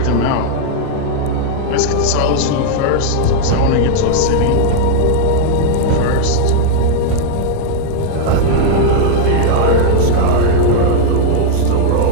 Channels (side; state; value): both; different; correlation 0.00